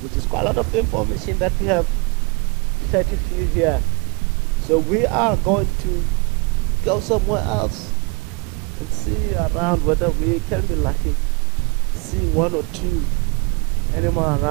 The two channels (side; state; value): left; quieter; 30.3 dB